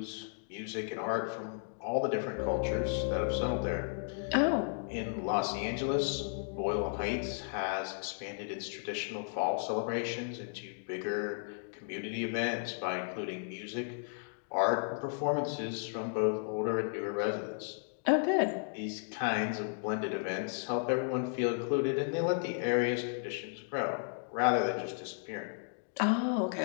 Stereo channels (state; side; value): silent; right; digital silence